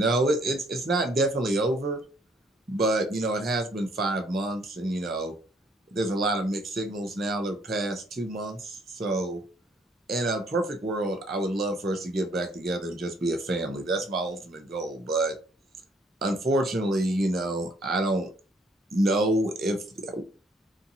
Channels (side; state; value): both; normal; correlation 0.65